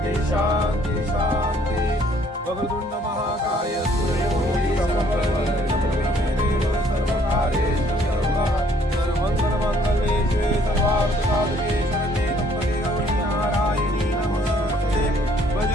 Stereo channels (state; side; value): normal; both; correlation 0.62